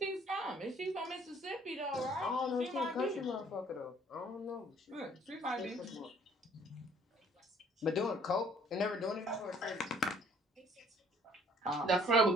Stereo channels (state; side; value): normal; both; correlation 0.59